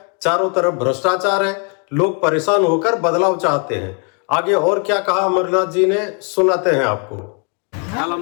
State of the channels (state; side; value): quieter; right; 38.7 dB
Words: चारों तरफ भ्रष्टाचार है, लोग परेशान होकर बदलाव चाहते हैं। आगे और क्या कहा अमरनाथ जी ने, सुनाते हैं आपको। कल